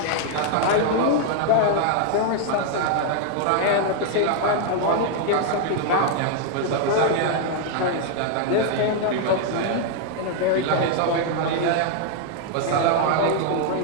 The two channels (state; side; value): different; both; correlation 0.00